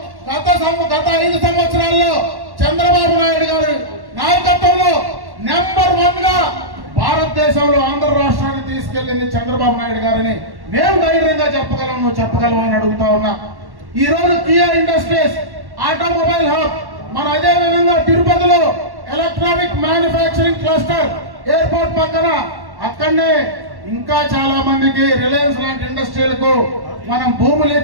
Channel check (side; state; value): left; late; 1.1 ms